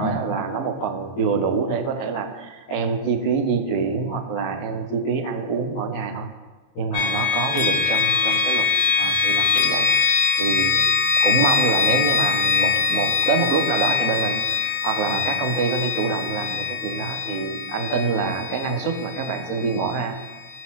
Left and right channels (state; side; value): late; right; 22 ms